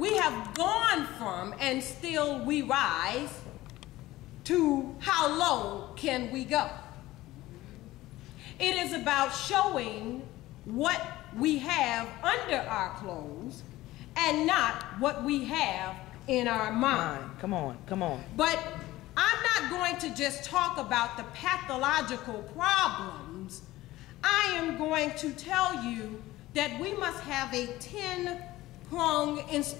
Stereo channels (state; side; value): quieter; right; 17.1 dB